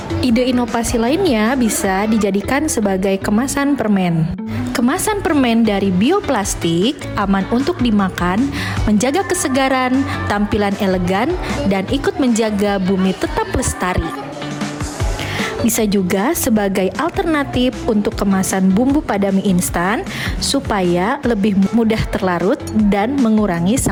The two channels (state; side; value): identical; both; correlation 1.00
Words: Ide inovasi lainnya bisa dijadikan sebagai kemasan permen. Kemasan permen dari bioplastik aman untuk dimakan, menjaga kesegaran, tampilan elegan, dan ikut menjaga bumi tetap lestari. Bisa juga sebagai alternatif untuk kemasan bumbu pada mie instan supaya lebih mudah terlarut dan mengurangi